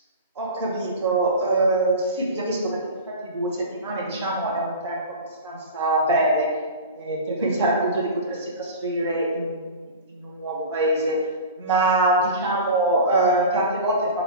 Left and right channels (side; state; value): both; inverted; correlation -0.30